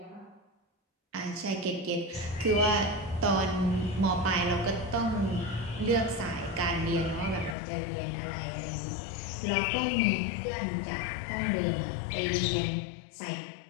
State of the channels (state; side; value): drops out; right; at 7.6 s